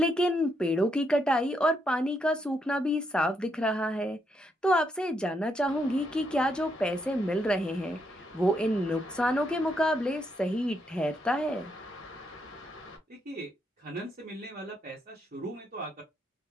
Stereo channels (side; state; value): both; normal; correlation 0.78